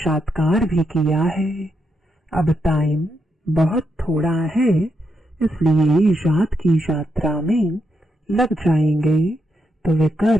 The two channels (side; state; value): both; normal; correlation 0.81